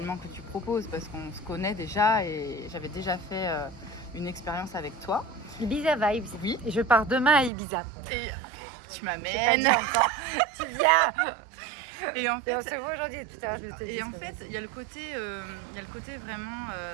que tu proposes parce qu'on se connaît déjà et j'avais déjà fait une expérience avec toi. Ibiza Vibes. Oui. Et je pars demain à Ibiza. Et tu J'ai pas m'amènes. dit encore. Tu viens. Et en fait, Et on se voit aujourd'hui. Tout à l'heure, je te dis. et en fait, il y a le côté vraiment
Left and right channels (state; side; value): drops out; left; at 7.5 s